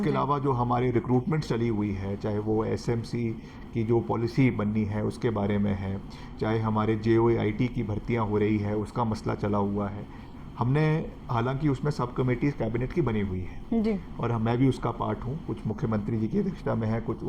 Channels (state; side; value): identical; both; correlation 1.00